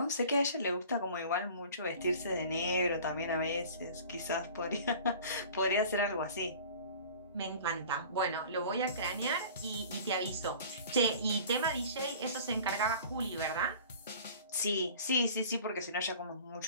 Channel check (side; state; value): both; inverted; correlation -0.43